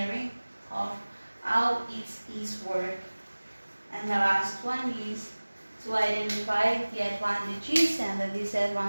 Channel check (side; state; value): both; inverted; correlation -1.00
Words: of how it is work. And the last one is to identify the advantages and the